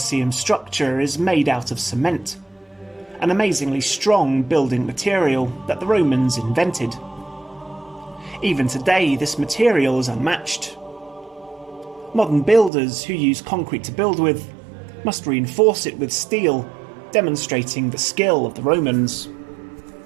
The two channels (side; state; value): left; drops out; at 12.7 s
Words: structure is made out of cement, an amazingly strong building material that the Romans invented. Even today, this material is unmatched. Modern builders who use concrete to build with must reinforce it with steel, demonstrating the skill of the Romans.